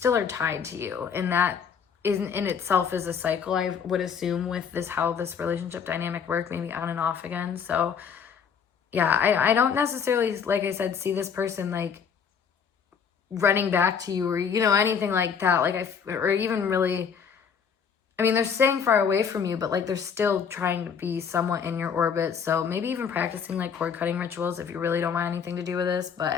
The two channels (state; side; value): quieter; right; 6.9 dB